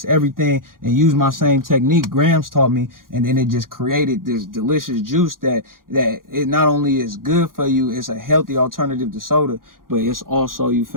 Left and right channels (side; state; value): left; late; 0.91 ms